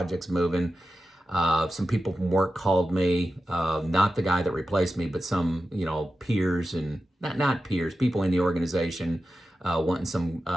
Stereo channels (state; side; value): normal; both; correlation 0.92